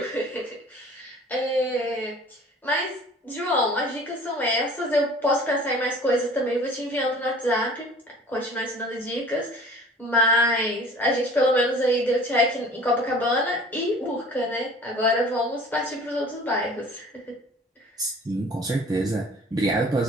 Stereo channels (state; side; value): normal; both; correlation 0.47